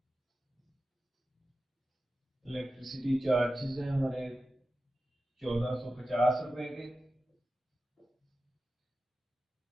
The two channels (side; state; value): both; normal; correlation 0.93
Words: इलेक्ट्रिसिटी चार्जेस हैं हमारे 1450 रुपए के।